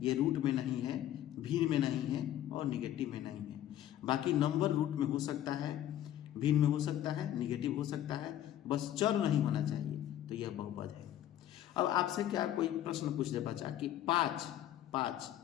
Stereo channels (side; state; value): right; quieter; 12.1 dB